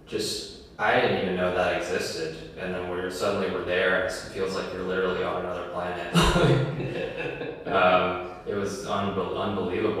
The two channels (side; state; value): both; identical; correlation 1.00